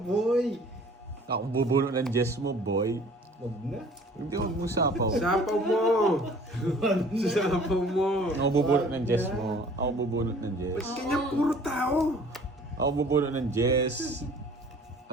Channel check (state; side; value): normal; both; correlation 0.51